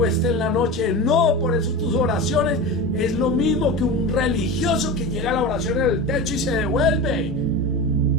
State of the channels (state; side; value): normal; both; correlation 0.26